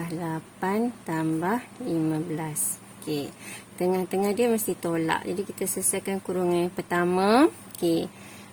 8 tambah 15. Okey, tengah-tengah dia mesti tolak. Jadi kita selesaikan kurungan yang pertama. Okey.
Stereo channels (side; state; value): both; identical; correlation 1.00